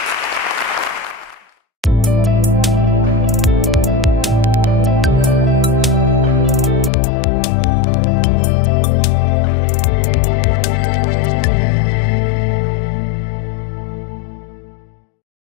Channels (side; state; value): right; drops out; at 6.9 s